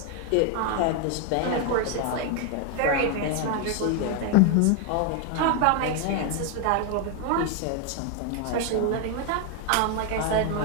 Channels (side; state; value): both; different; correlation 0.01